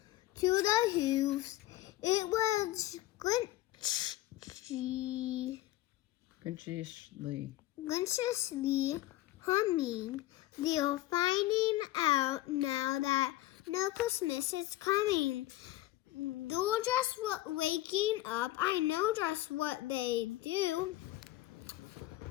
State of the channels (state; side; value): quieter; right; 16.2 dB